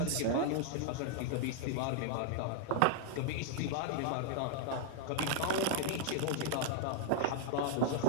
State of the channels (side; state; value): both; different; correlation 0.00